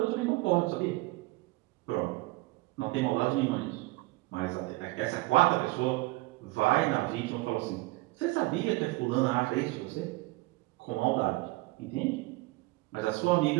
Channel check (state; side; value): quieter; left; 21.5 dB